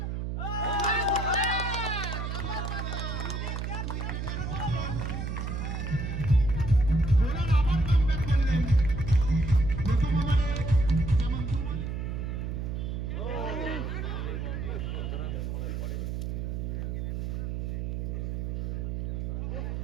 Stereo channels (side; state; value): right; noise; hum, 2 dB below the sound